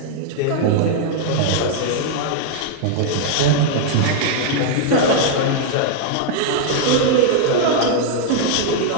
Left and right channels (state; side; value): different; both; correlation -0.01